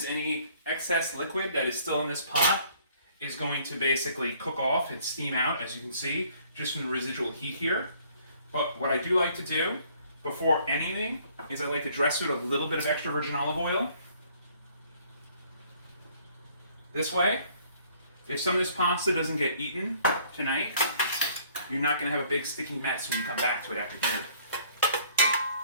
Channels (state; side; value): inverted; both; correlation -0.60